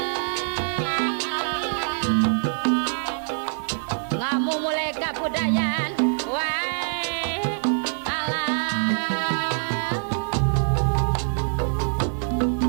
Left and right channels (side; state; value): left; silent; 62 dB below the other